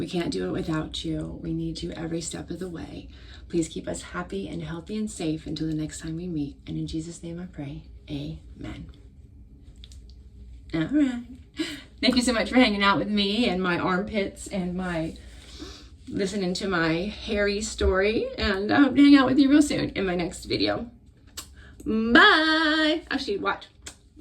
can't do it without you. We need you every step of the way. Please keep us happy and healthy and safe until the next time we meet. And in Jesus' name I pray, amen. All right. Thank you so much for hanging out with me and my armpits and my listening to my hairy story. And I hope to hang out with you real soon in my next video. Bye. Actually, watch.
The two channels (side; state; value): both; identical; correlation 1.00